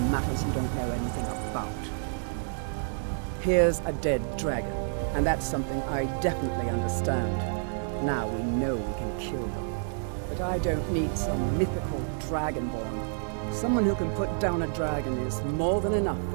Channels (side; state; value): left; silent; digital silence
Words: matters you don't know anything about. Here's a dead dragon, and that's something I definitely understand. Now we know we can kill them. But I don't need some mythical Dragonborn. Someone who can put down a dragon is more than enough